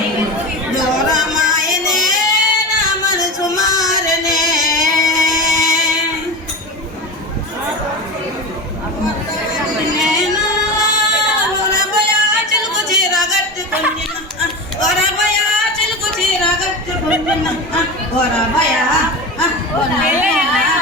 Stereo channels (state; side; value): normal; both; correlation 0.24